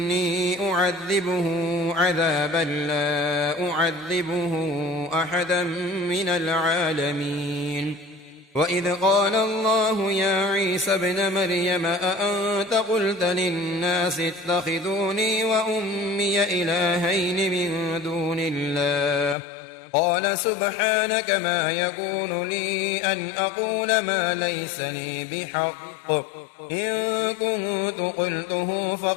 أعذبه عذابا لا أعذبه أحدا من العالمين وإذ قال الله يا عيسى ابن مريم أأنت قلت للناس اتخذوني وأمي إلهين من دون الله قال سبحانك ما يكون لي أن أقول ما ليس لي بحق إن كنت قلته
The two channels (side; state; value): right; drops out; at 19.4 s